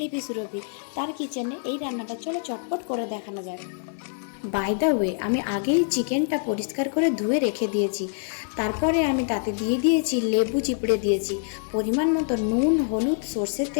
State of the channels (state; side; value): silent; right; digital silence